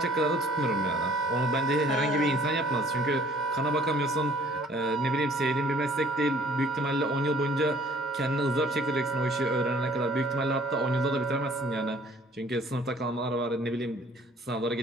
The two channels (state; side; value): normal; both; correlation 0.56